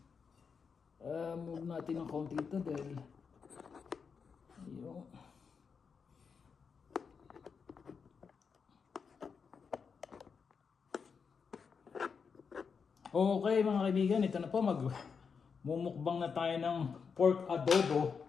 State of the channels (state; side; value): quieter; right; 5.9 dB